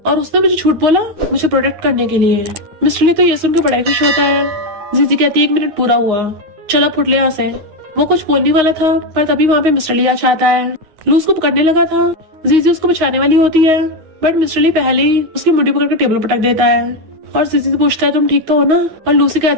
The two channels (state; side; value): late; left; 9.6 ms